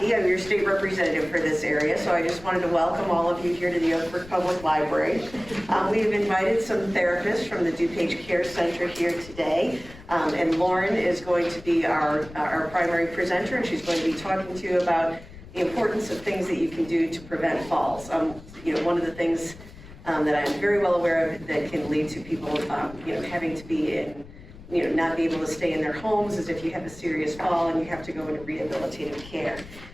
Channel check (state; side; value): noise; left; rumble, 18 dB below the sound